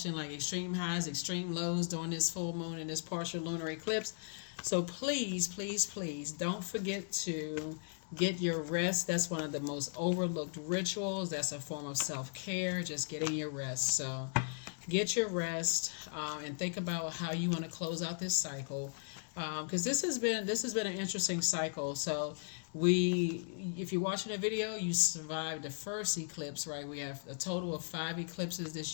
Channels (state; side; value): silent; right; digital silence